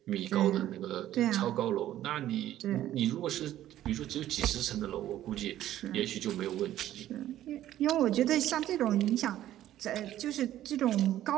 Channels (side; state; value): left; quieter; 12.9 dB